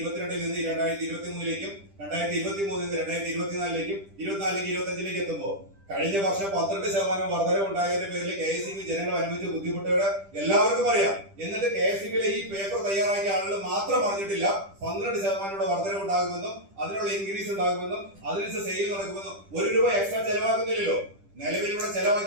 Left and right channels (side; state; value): left; late; 10 ms